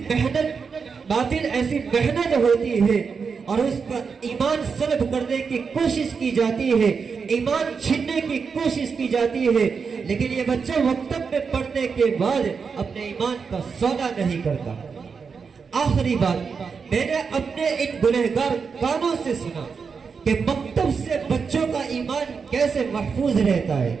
محنت ہوتی ہے اور اس کا ایمان سلب کرنے کی کوشش کی جاتی ہے، ایمان چھیننے کی کوشش کی جاتی ہے. لیکن یہ بچہ مکتب میں پڑھنے کے بعد اپنے ایمان کا سودا نہیں کرتا. آخری بات، میں نے اپنے ان گنہگار کانوں سے سنا کہ مکتب سے بچوں کا ایمان کیسے محفوظ رہتا ہے.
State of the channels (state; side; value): quieter; left; 5.6 dB